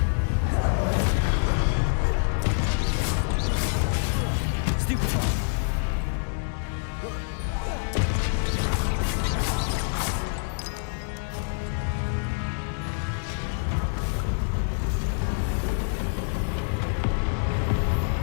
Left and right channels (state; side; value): silent; right; digital silence